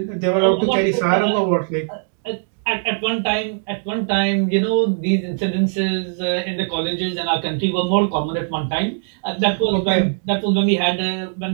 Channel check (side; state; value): left; silent; digital silence